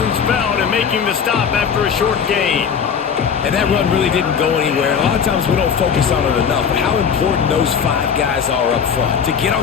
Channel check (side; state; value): right; quieter; 7.0 dB